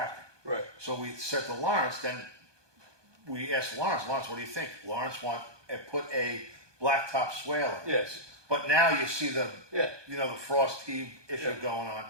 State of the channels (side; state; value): left; late; 1.2 ms